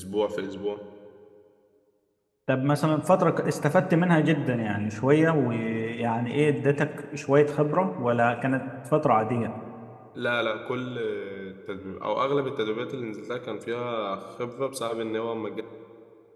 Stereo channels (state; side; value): identical; both; correlation 1.00